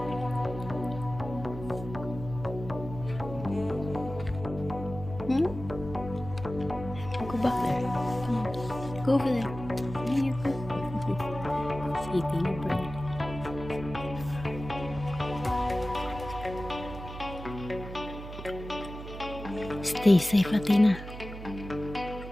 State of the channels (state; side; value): noise; right; hum, 11 dB below the sound